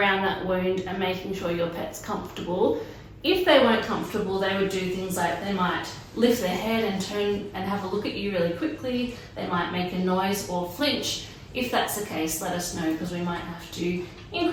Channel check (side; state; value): both; identical; correlation 1.00